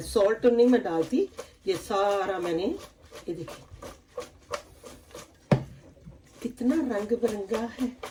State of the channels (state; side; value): identical; both; correlation 1.00